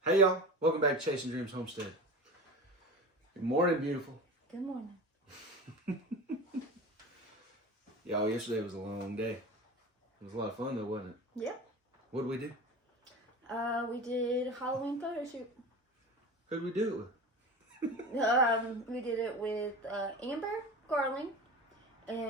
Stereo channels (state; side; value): normal; both; correlation 0.31